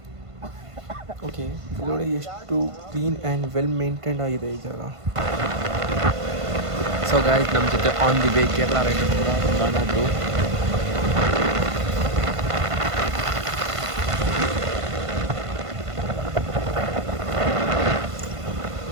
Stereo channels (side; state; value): left; late; 1.5 ms